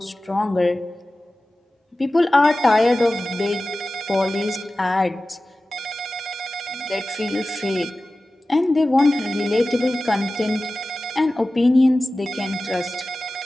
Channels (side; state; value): both; normal; correlation 0.96